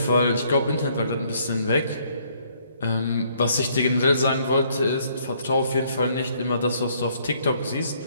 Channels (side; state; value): both; inverted; correlation -0.66